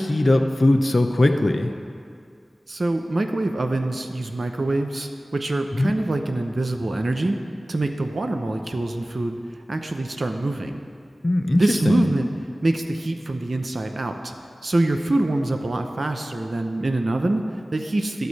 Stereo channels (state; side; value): normal; both; correlation 0.96